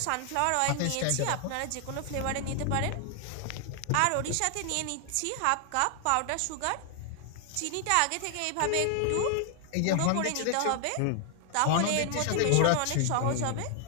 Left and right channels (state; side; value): different; both; correlation 0.00